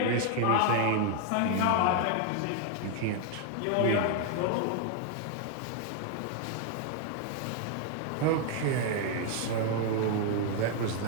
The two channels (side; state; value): both; different; correlation 0.00